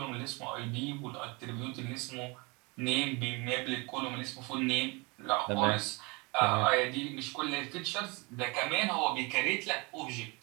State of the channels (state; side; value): quieter; left; 28.1 dB